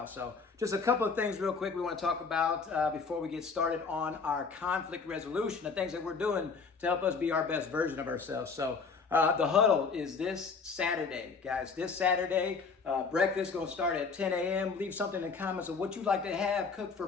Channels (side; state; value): right; quieter; 5.0 dB